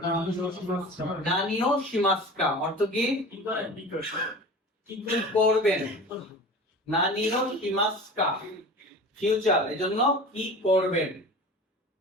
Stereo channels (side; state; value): both; normal; correlation 0.36